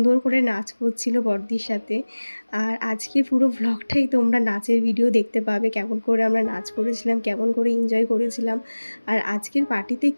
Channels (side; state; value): both; inverted; correlation -1.00